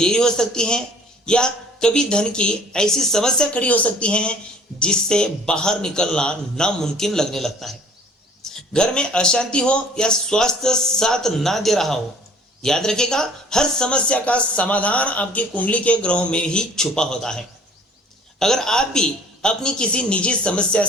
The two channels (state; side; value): normal; both; correlation 0.53